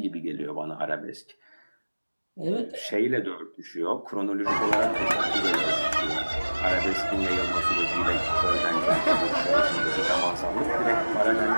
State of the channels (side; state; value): both; inverted; correlation -1.00